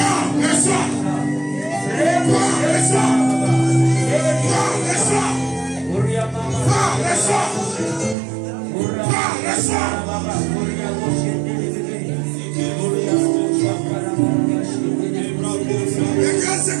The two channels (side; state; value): left; drops out; at 8.2 s